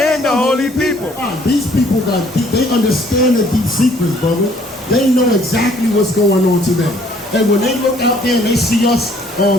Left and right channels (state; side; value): normal; both; correlation 0.61